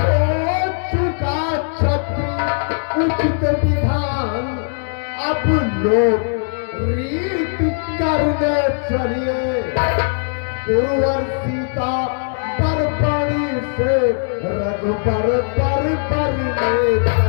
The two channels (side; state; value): right; silent; 61 dB below the other